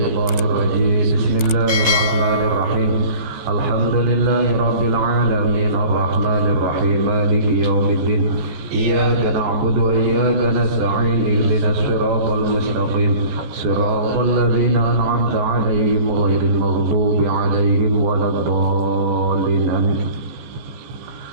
syaithanir rajim. Bismillahirrahmanirrahim. Alhamdulillahi rabbil alamin arrahmanir rahim maliki yaumiddin iyyaka na'budu wa iyyaka nasta'in ihdinas siratal mustaqim siratal ladzina an'amta 'alaihim ghairil maghdubi 'alaihim waladdallin amin.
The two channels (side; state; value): left; late; 14 ms